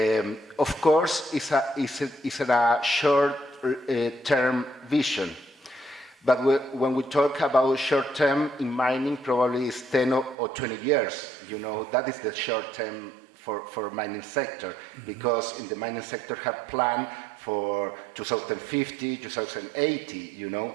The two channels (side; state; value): left; drops out; at 10.4 s